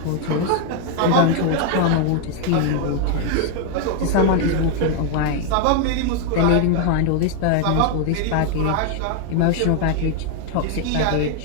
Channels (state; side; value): different; both; correlation 0.00